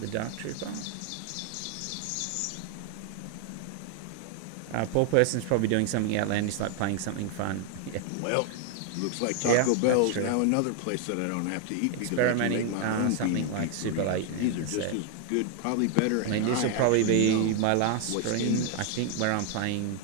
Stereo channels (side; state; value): both; different; correlation 0.00